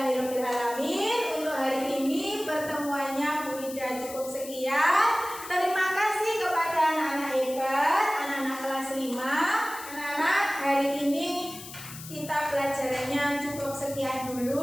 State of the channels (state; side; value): noise; left; hiss, 13 dB below the sound